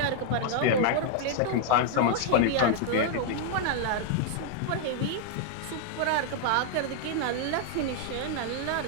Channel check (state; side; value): different; both; correlation 0.00